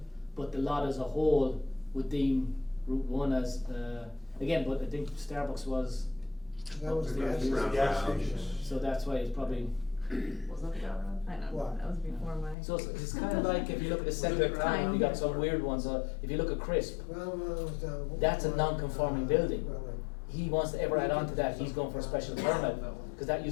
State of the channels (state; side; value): drops out; right; at 12.6 s